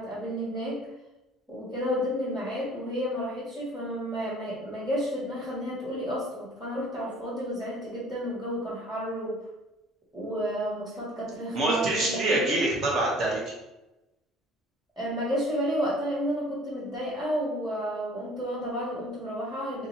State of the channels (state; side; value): normal; both; correlation 0.51